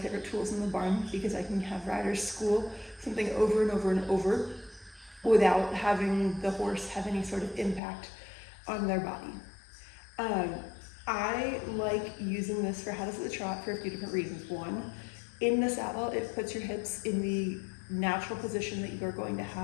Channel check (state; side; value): drops out; right; at 7.8 s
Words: tools in the barn because I can have riders school something over and over and over without having the horse have any sort of impact on their body. I like using this for how to sit the trot for a few different reasons. One, in the saddle, it puts your hips in the natural position that you are going to